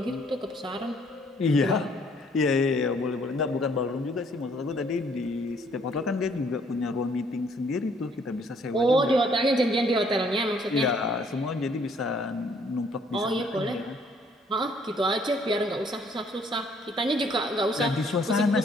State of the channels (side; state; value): both; normal; correlation 0.64